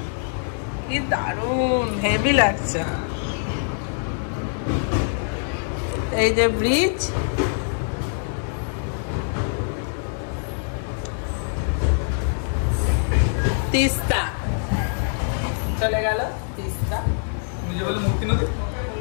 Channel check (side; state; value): right; silent; digital silence